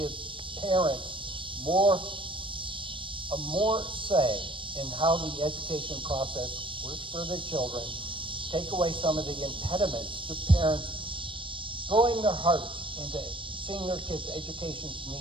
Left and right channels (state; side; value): late; left; 0.25 ms